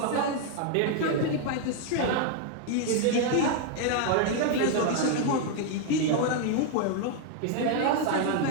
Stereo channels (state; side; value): different; both; correlation 0.00